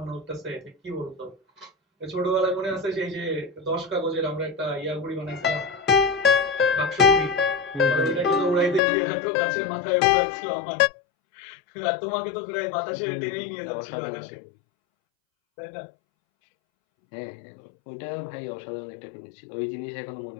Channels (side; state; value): right; drops out; at 8.8 s